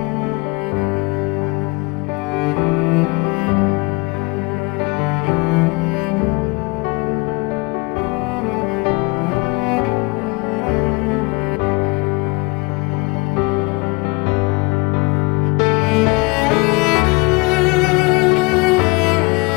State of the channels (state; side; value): quieter; right; 26.8 dB